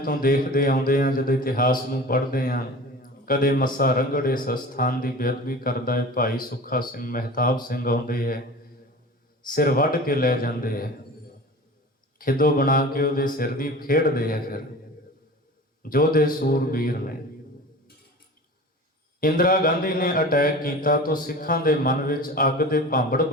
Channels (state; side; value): normal; both; correlation 0.37